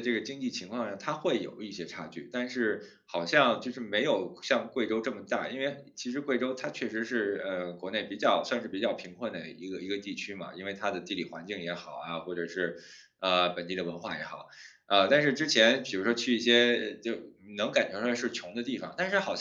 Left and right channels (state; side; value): identical; both; correlation 1.00